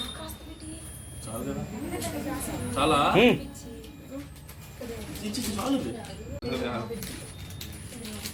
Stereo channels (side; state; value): both; identical; correlation 1.00